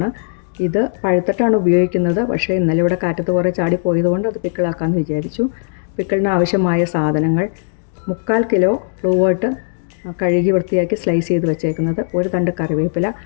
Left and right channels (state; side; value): silent; right; digital silence